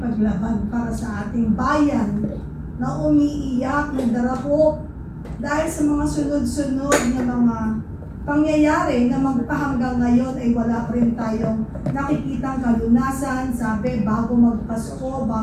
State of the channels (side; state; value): both; identical; correlation 1.00